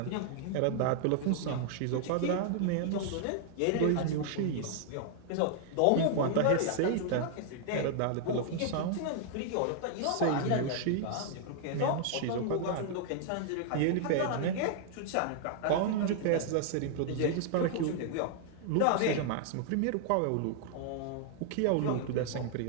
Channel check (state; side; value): different; both; correlation -0.01